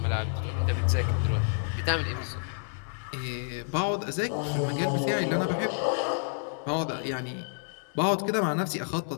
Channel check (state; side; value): silent; right; digital silence